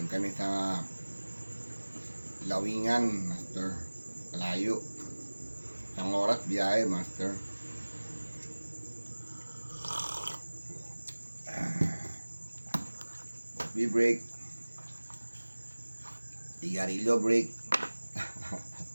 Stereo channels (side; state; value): both; inverted; correlation -1.00